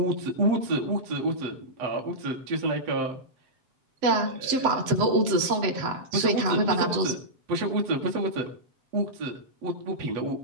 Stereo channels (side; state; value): left; late; 7.9 ms